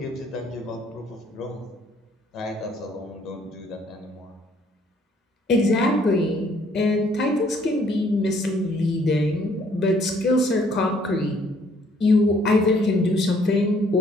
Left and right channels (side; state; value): both; normal; correlation 0.64